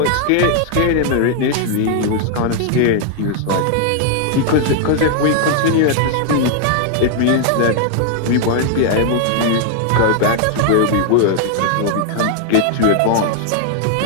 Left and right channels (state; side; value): different; both; correlation 0.00